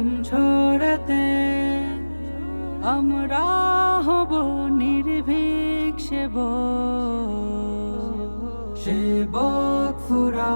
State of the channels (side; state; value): both; inverted; correlation -1.00